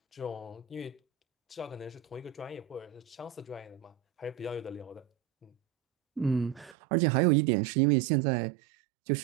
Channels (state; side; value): drops out; left; at 6.8 s